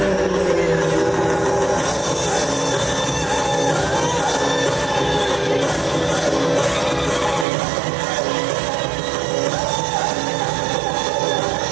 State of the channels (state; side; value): drops out; left; at 7.5 s